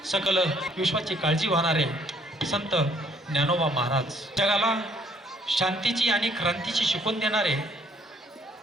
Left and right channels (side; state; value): both; normal; correlation 0.64